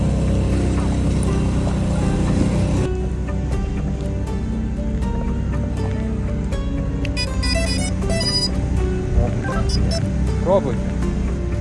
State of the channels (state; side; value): identical; both; correlation 1.00